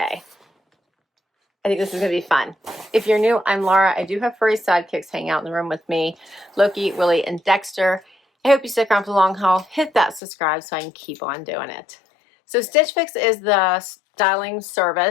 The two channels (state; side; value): drops out; right; at 10.2 s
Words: I think this is going to be fun. If you're new, I'm Laura. I do have furry sidekicks hanging out in the room with me, Loki, Willie, and Dexter. I hope you stick around for the long haul. Hit that subscribe so I can keep on doing it. So Stitch Fix is the styling